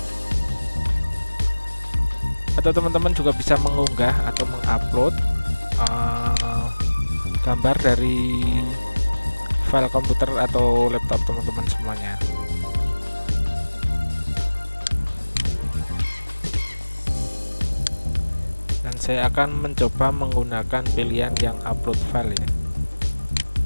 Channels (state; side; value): inverted; both; correlation -1.00